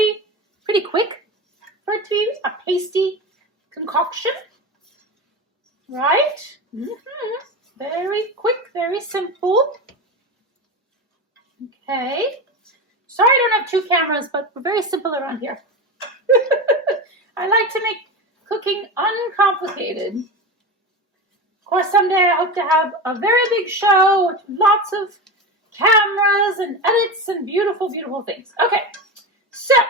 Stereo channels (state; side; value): normal; both; correlation 0.23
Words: quick for it to be a pasty concoction. Right? Very quick, very simple. Okay. Sorry I don't have two cameras, but we're very simple around here. I like to make cooking uncomplicated. Of course, someday I hope to have a very big show with lots of cameras and edits and beautiful, beautiful things. Okay, so